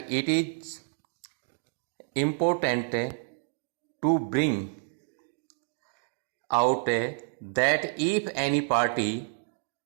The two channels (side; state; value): left; silent; digital silence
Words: it is important to bring out that if any party